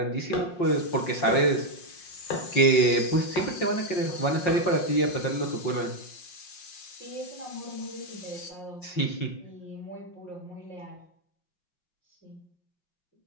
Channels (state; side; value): late; right; 5.6 ms